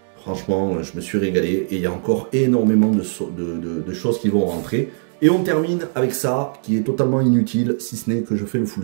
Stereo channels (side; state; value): left; silent; digital silence